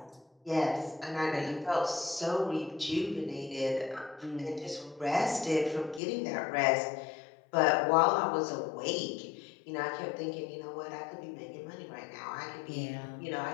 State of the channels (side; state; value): right; drops out; at 6.0 s